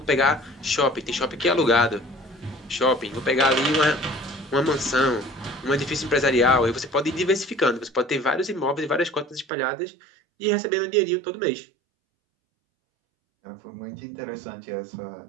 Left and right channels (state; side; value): drops out; left; at 9.5 s